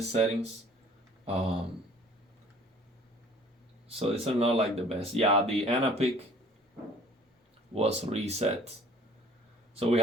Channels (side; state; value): both; normal; correlation 0.52